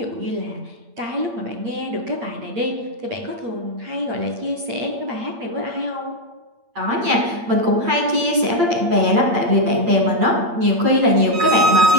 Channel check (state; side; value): late; left; 8.7 ms